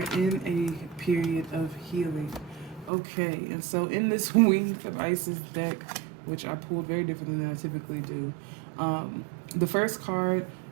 in a period of healing. Okay, and so in this Wings of Isis deck, which I pulled very differently than I typically do, the first card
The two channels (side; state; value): left; drops out; at 2.9 s